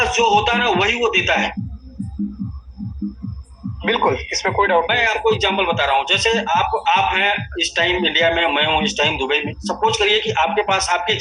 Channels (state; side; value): identical; both; correlation 1.00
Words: जो होता है ना वही वो देता है। बिल्कुल, इसमें कोई डाउट नहीं। मैं आपको एग्जांपल बता रहा हूँ। जैसे आप हैं इस टाइम इंडिया में, मैं हूँ इस टाइम दुबई में। सपोज करिए कि आपके पास आपके